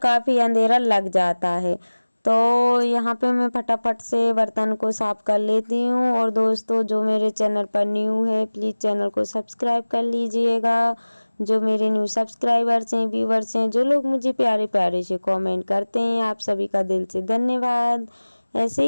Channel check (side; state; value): both; inverted; correlation -1.00